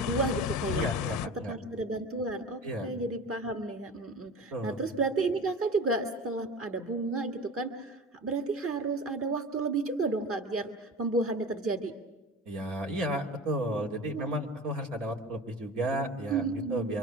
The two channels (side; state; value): both; normal; correlation 0.34